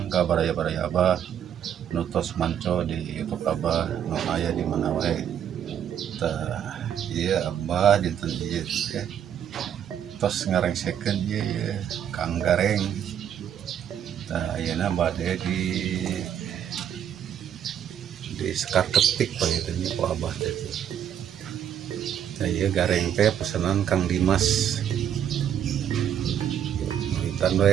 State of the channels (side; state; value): left; quieter; 9.5 dB